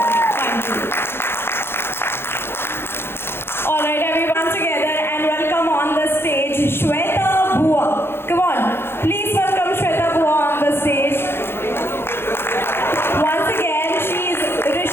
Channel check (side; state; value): right; late; 0.11 ms